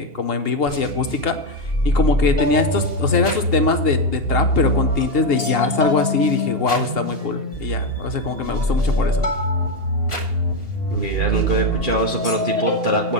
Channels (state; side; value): late; left; 2.8 ms